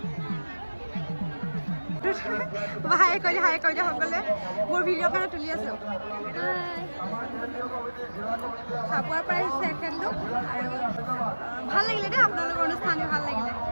হাই কৰি দিয়া সকলে মোৰ ভিডিঅ' কাৰণে তুলি আছোঁ চাবুৱাৰ পৰা আহিছে এখেতলোক আৰু ভাল লাগিলে দেই আপোনালোকৰ অনুষ্ঠান ভাল লাগিলে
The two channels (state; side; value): inverted; both; correlation -1.00